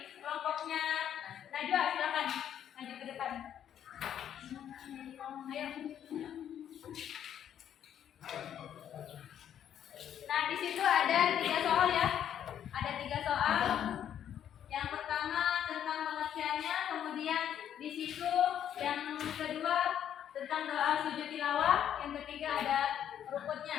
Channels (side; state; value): right; quieter; 9.8 dB